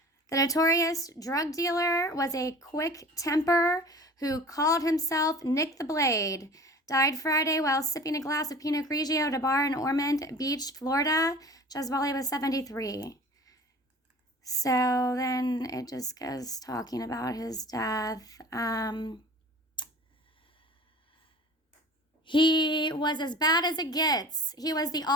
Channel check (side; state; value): both; normal; correlation 0.42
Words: The notorious drug dealer was a quick temper who called himself Nick the Blade. Died Friday while sipping a glass of Pinot Grigio at a bar in Ormond Beach, Florida. Gesuale was 73. So then it just goes talking about his death. He was as bad as it gets. He was the